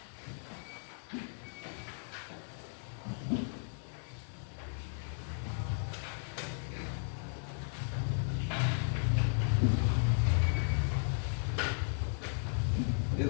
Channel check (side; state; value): right; silent; digital silence